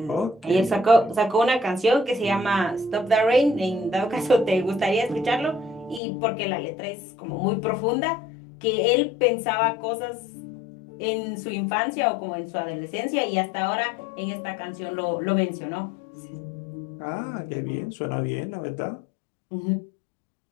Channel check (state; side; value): drops out; right; at 6.0 s